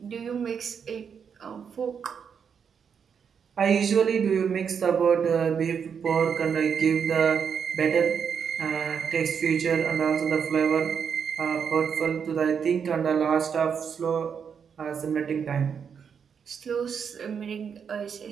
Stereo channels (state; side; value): quieter; left; 6.9 dB